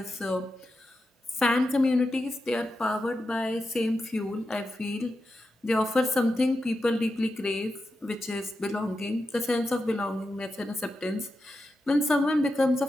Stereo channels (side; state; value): both; normal; correlation 0.89